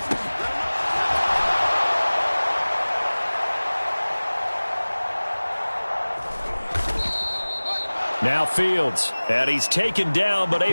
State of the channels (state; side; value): inverted; both; correlation -1.00